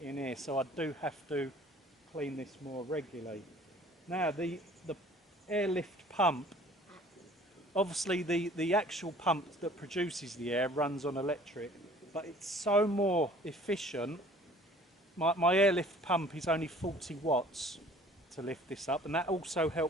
in here, so I do have to clean this more regularly. Now the airlift pump, obviously the actual pump that produces the air runs on electric, but it's so more efficient. My airlift pump is only 40 watts to lift this up, and that also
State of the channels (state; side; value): normal; both; correlation 0.52